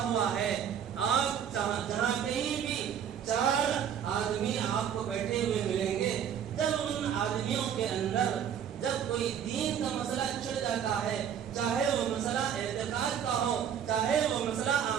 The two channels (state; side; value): quieter; left; 8.6 dB